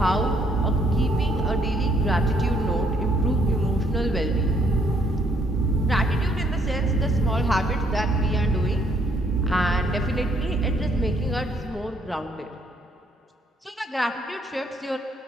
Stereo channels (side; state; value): both; normal; correlation 0.68